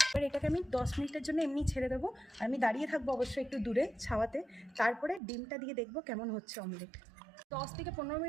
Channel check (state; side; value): drops out; left; at 5.2 s